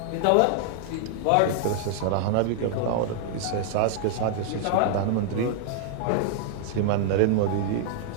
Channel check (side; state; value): both; different; correlation -0.01